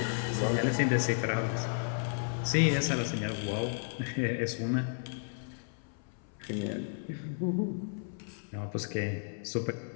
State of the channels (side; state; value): right; silent; 56 dB below the other